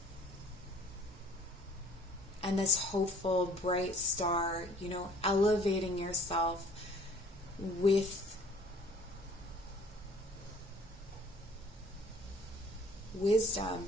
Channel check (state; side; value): normal; both; correlation 0.55